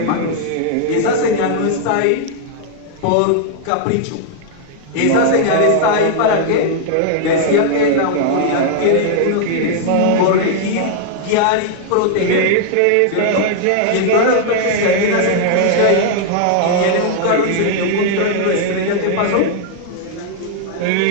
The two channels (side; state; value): both; different; correlation 0.00